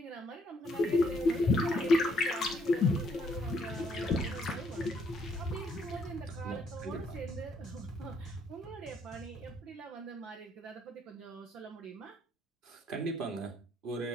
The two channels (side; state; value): both; normal; correlation 0.69